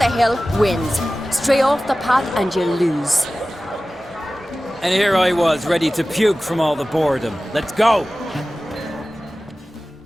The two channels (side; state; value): both; normal; correlation 0.96